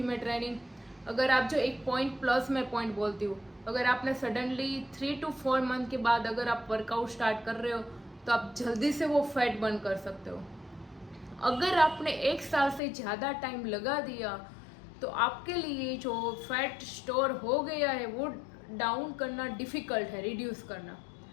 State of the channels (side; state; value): right; drops out; at 12.8 s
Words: ट्रेनिंग, अगर आप जो एक पॉइंट प्लस मैं पॉइंट बोलती हूँ, अगर आपने सडनली 3 to 4 मंथ के बाद अगर आप वर्कआउट स्टार्ट कर रहे हो तो आप जल्दी से वो फैट बर्न कर सकते हो। अगर आपने 1 साल से ज़्यादा टाइम लगा दिया तो आपके लिए जो फैट स्टोर हो गया है वो डाउन करना डिफ़िकल्ट है, रिड्यूस करना।